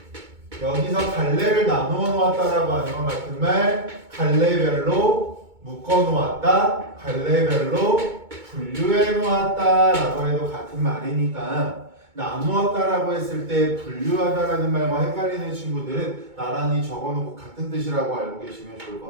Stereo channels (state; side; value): late; left; 2.2 ms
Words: 여기서 갈래를 나누어 놓았다라고 하는 건 같은 말 갈래별로 묶어 놓았다, 갈래별로 분류해 놓았다라고 해도 같은 말이니까 나누었다라고 했을 때 분류하다라는 말과 헷갈리는 친구들은 나란히 적어놓고 같은 뜻이라고 알고 계시면 좋을 것